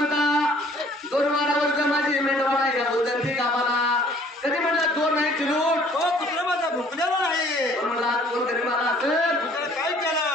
2 वर्ष माझी मेंढवाडा या उदंती गावाला कधी म्हणलं चोर नाही चिरूट. हो कुत्रा माझा भुकलेला नाही. म्हणला चोर घरी मला असेल. कुत्र्याला काय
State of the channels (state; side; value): normal; both; correlation 0.56